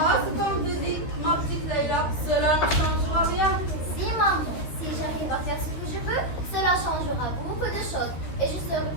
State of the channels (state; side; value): late; right; 13 ms